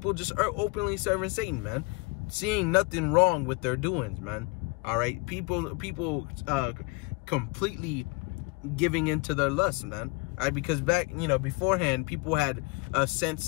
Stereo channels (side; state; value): right; quieter; 27.2 dB